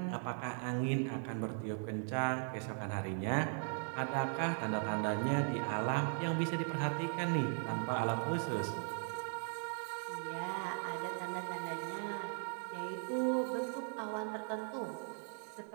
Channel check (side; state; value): left; silent; 52 dB below the other